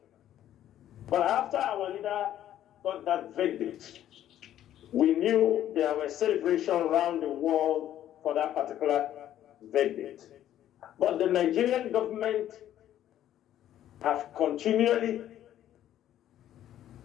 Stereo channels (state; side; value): quieter; right; 11.8 dB